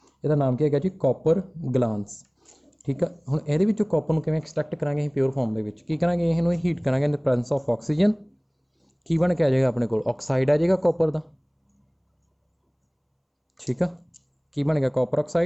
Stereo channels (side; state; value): both; identical; correlation 1.00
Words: ਇਹਦਾ ਨਾਮ ਕੀ ਹੈਗਾ ਜੀ ਕਾਪਰ ਗਲਾਂਸ ਠੀਕ ਆ ਹੁਣ ਇਹਦੇ ਵਿੱਚੋਂ ਕਾਪਰ ਨੂੰ ਕਿਵੇਂ ਐਕਸਟ੍ਰੈਕਟ ਕਰਾਂਗੇ ਅਸੀਂ ਪਿਓਰ ਫਾਰਮ ਦੇ ਵਿੱਚ ਕੀ ਕਰਾਂਗੇ ਇਹਨੂੰ ਹੀਟ ਕਰਾਂਗੇ ਇਨ ਦ ਪ੍ਰੈਜ਼ੈਂਸ ਆਫ ਆਕਸੀਜਨ ਕੀ ਬਣ ਕੇ ਆ ਜਾਏਗਾ ਆਪਣੇ ਕੋਲ ਆਕਸਾਈਡ ਆ ਜਾਏਗਾ ਕਾਪਰ ਦਾ ਠੀਕ ਆ ਕੀ ਬਣ ਗਿਆ copper